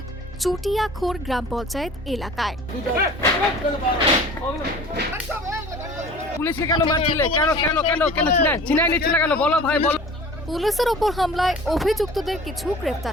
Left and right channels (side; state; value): both; normal; correlation 0.43